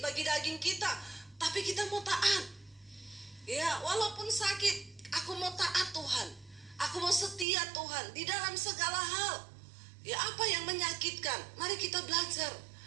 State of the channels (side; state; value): left; drops out; at 7.5 s